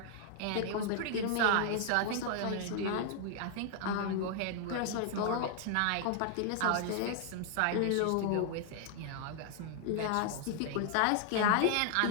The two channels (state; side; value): different; both; correlation 0.00